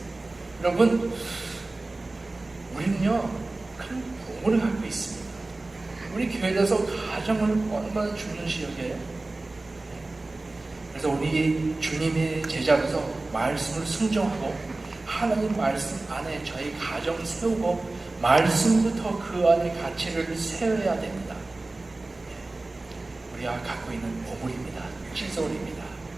여러분, 우리는요 큰 복을 갖고 있습니다. 우리 교회에서 가정을 얼마나 중요시 여겨요. 그래서 우리 주님의 제자로서 말씀을 순종하고 하나님 말씀 안에 저희 가정 세우고 말씀부터 그 안에 가치를 세워야 됩니다. 우리가 갖고 있는 보물입니다. 실소리입니다.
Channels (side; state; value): left; quieter; 3.1 dB